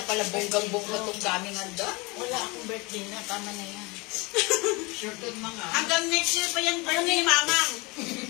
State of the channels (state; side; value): quieter; right; 26.4 dB